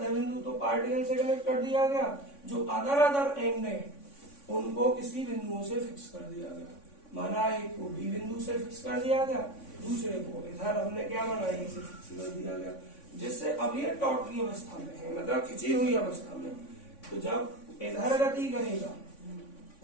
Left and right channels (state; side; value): late; right; 3.5 ms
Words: बिंदु तो पार्टिकल से कनेक्ट कर दिया गया, जो अदर एंड है उनको किसी बिंदुओं से फिक्स कर दिया गया। माना एक को बी बिंदु से फिक्स कर दिया गया, दूसरे को इधर हमने क्या माना ए से फिक्स कर दिया गया, जिससे अब ये टॉटली अवस्था में है, मतलब खिंची हुई अवस्था में। तो जब इधर गति करेगा